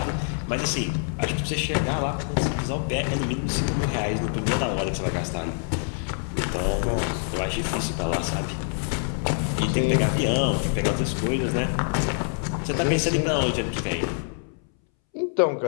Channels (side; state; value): right; silent; 61 dB below the other